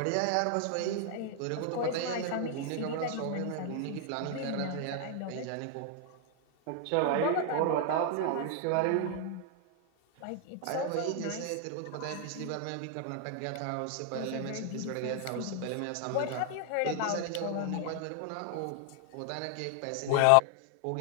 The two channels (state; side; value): different; both; correlation 0.00